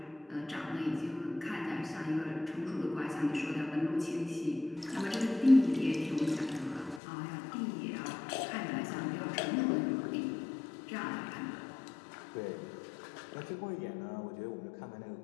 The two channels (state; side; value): drops out; right; at 7.0 s